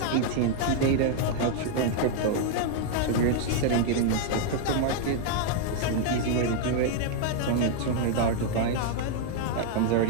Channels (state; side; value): different; both; correlation -0.01